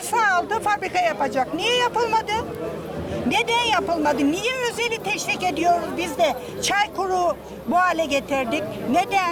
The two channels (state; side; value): identical; both; correlation 1.00